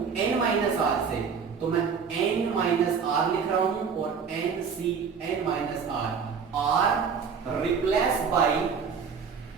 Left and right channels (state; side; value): quieter; left; 6.1 dB